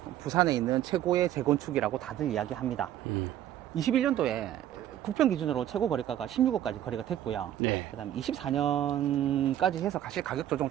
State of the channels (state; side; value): quieter; left; 11.9 dB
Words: 부산에 있는 최고의 재건축이라고 다들 이야기합니다. 21년도에 국평 기준으로 최고 거래가가 16억까지 거래가 됐고요. 네. 그다음 24년까지 해서 사실 가격 조정